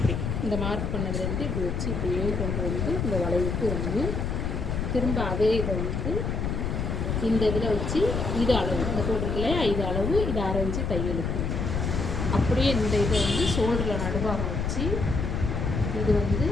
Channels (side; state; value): left; noise; rumble, 1 dB below the sound